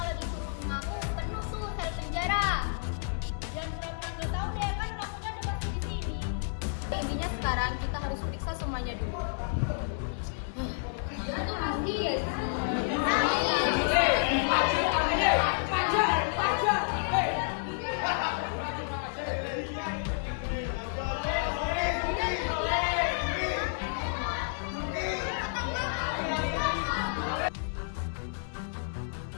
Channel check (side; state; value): right; silent; 57 dB below the other